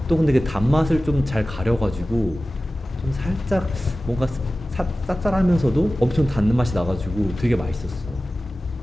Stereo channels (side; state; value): both; normal; correlation 0.96